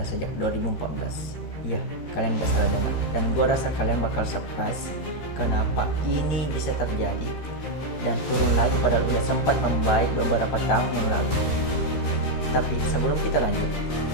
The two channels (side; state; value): right; late; 13 ms